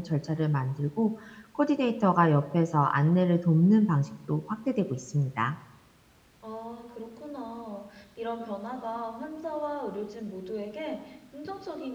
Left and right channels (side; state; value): both; identical; correlation 1.00